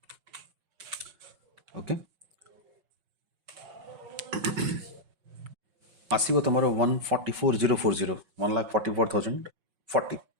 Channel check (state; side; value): late; left; 5.4 ms